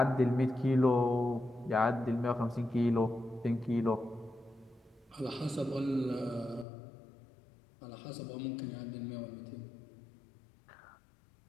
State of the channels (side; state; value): right; drops out; at 6.7 s